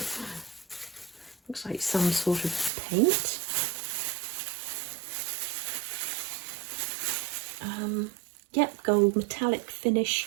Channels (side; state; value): left; drops out; at 2.7 s